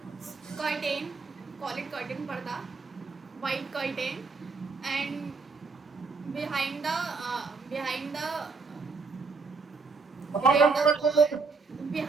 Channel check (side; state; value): left; quieter; 4.5 dB